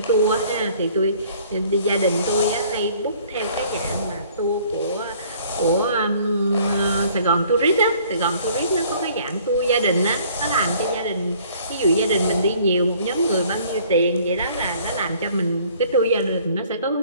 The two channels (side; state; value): both; inverted; correlation -0.56